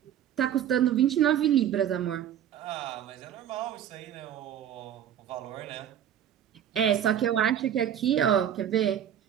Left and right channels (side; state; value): left; quieter; 10.1 dB